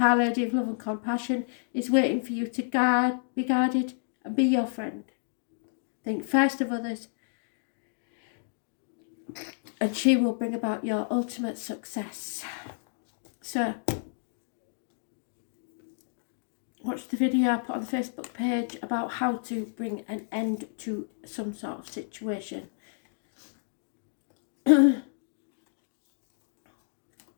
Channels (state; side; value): silent; right; digital silence